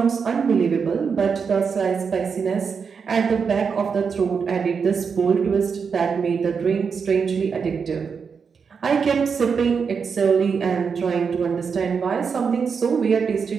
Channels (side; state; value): left; quieter; 5.9 dB